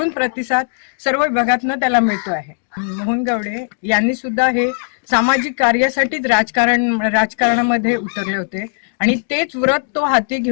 प्रतिसाद सर्व विभागातनं त्याला मिळतो आहे. मोहन गावडे यांनी सुद्धा हे सामाजिक कार्यासाठीच राजकारणामध्ये उतरले होते आणि तेच व्रत तो हाती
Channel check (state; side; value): silent; right; digital silence